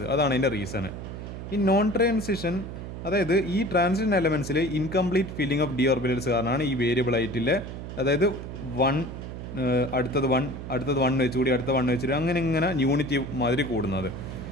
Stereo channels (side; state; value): right; noise; hum, 9 dB below the sound